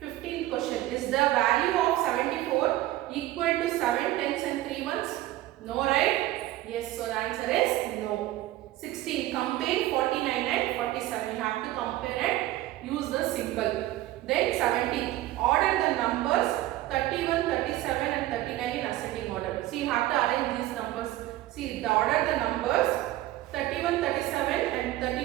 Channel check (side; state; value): left; quieter; 15.6 dB